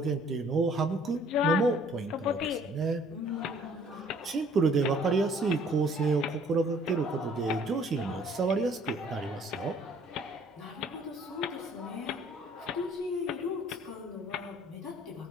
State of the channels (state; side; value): normal; both; correlation 0.58